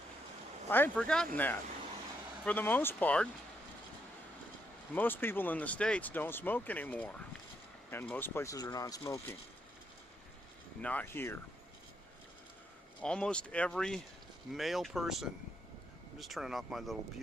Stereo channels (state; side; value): normal; both; correlation 0.77